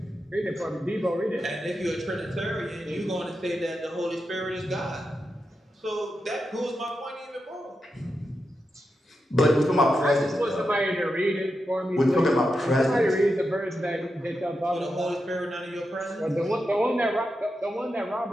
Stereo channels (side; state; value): both; normal; correlation 0.88